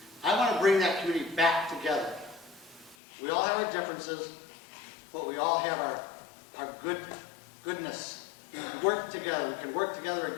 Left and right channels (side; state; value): right; drops out; at 3.0 s